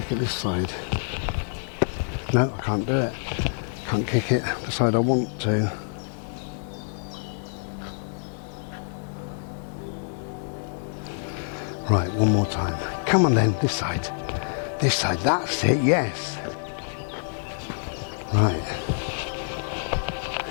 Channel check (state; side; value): silent; right; digital silence